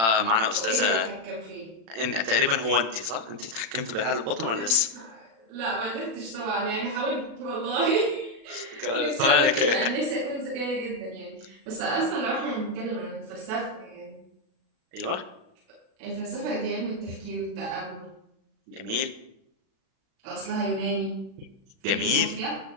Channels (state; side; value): late; left; 36 ms